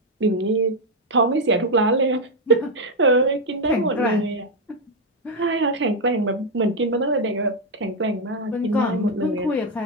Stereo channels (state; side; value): normal; both; correlation 0.03